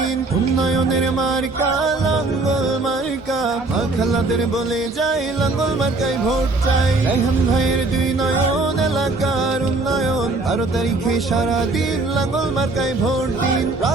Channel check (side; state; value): left; quieter; 3.3 dB